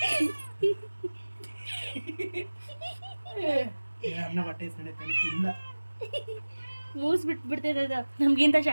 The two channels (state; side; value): inverted; both; correlation -1.00